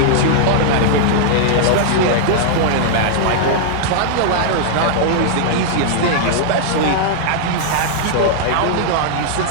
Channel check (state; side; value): different; both; correlation -0.01